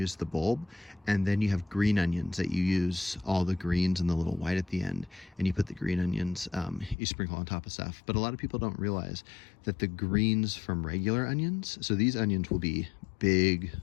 the bulb, and then you have green onions that you use all the greens and the little white at the end, and you put the green onions, you sprinkle on top of stuff. But a lot of people don't realize that the greens from regular onions, so these onions will be big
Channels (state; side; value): drops out; right; at 7.0 s